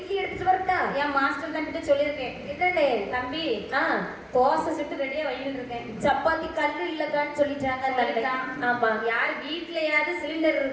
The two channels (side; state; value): both; identical; correlation 1.00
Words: எடுத்துட்டு வரட்டா? என் மாஸ்டர் தம்பிட்ட சொல்லியிருக்கேன். என்னடே தம்பி, தோசை சுட்டு ரெடியா வையிட்டு இருக்கேன். சப்பாத்தி கல்லு இல்லக்கான்னு சொல்லிட்டாங்க. ஆமா. யார் வீட்லயாவது சிலிண்டர்